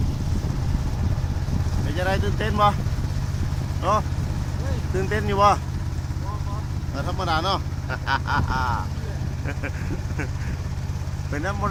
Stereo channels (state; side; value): identical; both; correlation 1.00